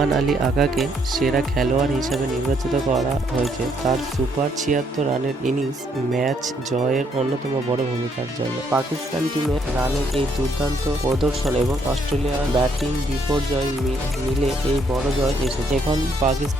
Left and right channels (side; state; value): both; normal; correlation 0.71